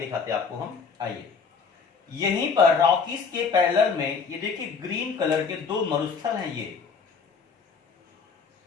हैं आपको हम। आइए, यहीं पर रॉकीज के पैरेलल में ये देखिए ग्रीन कलर के 2 मरुस्थल हैं। ये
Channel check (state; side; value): quieter; right; 5.4 dB